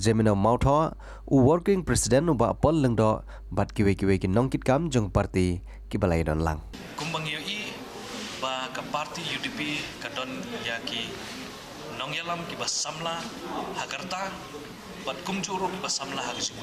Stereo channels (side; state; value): both; identical; correlation 1.00